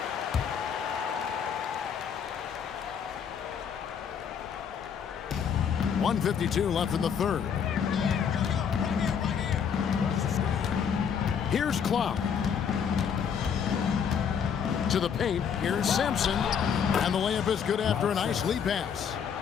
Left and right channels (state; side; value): quieter; right; 7.4 dB